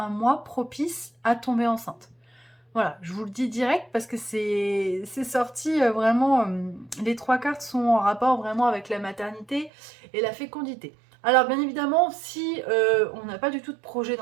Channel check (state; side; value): drops out; left; at 9.7 s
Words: mois propice à tomber enceinte. Voilà, je vous le dis direct parce que c'est sorti vraiment, les trois cartes sont en rapport vraiment avec la maternité et la fécondité. Alors bien évidemment, si on n'a pas du tout de projet